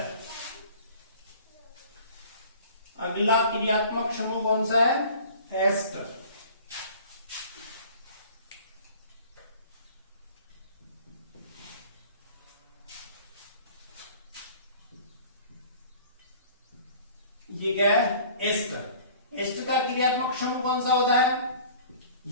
अगला क्रियात्मक समूह कौन सा है, एस्टर। ये क्या है, एस्टर। एस्टर का क्रियात्मक समूह कौन सा होता है,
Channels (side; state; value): both; inverted; correlation -0.47